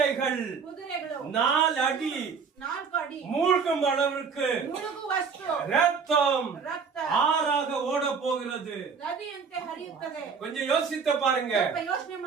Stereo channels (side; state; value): left; quieter; 5.7 dB